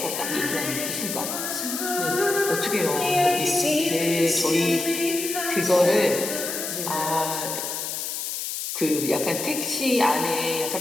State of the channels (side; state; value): left; noise; hiss, 4 dB below the sound